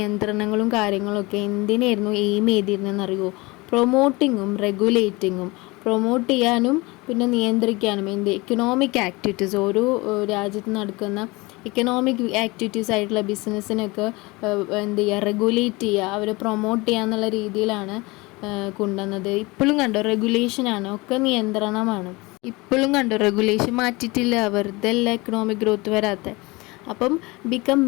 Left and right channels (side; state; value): right; quieter; 23.7 dB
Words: കാര്യങ്ങളൊക്കെ എന്തിനായിരുന്നു എയിം ചെയ്തിരുന്നതെന്നറിയുമോ? പ്രൊമോട്ടിങ്ങും റെഗുലേറ്റിങ്ങും. പ്രൊമോട്ട് ചെയ്യാനും പിന്നെ നിയന്ത്രിക്കാനും എക്കണോമിക് ആക്ടിവിറ്റീസ്, ഓരോ രാജ്യത്ത് നടക്കുന്ന എക്കണോമിക് ആക്ടിവിറ്റീസ് ആയിട്ടുള്ള ബിസിനസ്സിനൊക്കെ റെഗുലേറ്റ് ചെയ്യുക, അവരെ പ്രൊമോട്ട് ചെയ്യുക എന്നുള്ള രീതിയിലാണ് കൊണ്ടുവന്നത്. ഇപ്പോഴും കണ്ടോ റെഗുലേഷനാണ്, ഒക്കെ നിയന്ത്രണമാണ്. ഇപ്പോഴും കണ്ടോ റെഗുലേഷൻ മാറ്റിയിട്ടില്ല, വെറുതെ അല്ല എക്കണോമിക് ഗ്രോത്ത് വരാത്ത. അപ്പം become